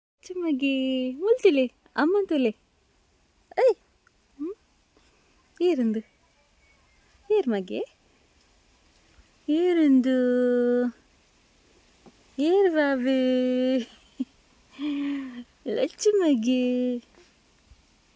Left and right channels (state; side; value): identical; both; correlation 1.00